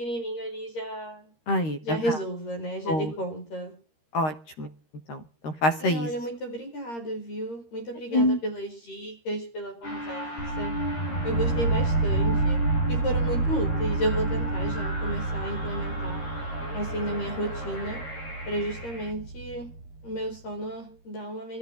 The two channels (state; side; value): late; right; 13 ms